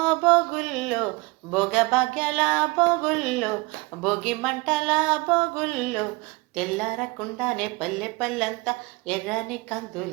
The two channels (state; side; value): quieter; left; 25.2 dB